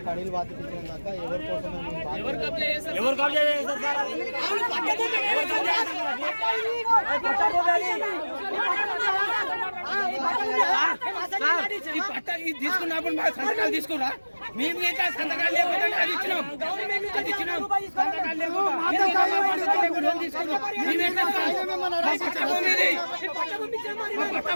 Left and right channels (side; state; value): both; inverted; correlation -1.00